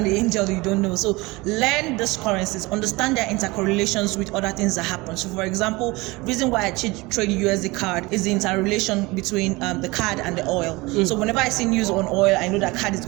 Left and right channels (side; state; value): left; quieter; 22.9 dB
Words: the angel you don't know. So learn these currencies, understand their intercorrelations with other things that happen. So for example, reason why I trade USD card is the interrelation between the card and the oil. So whenever I see news on oil, I know that card is